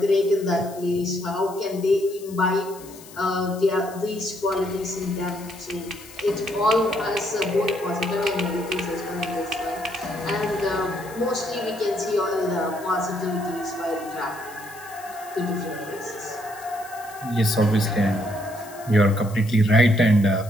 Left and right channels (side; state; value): left; noise; hiss, 19 dB below the sound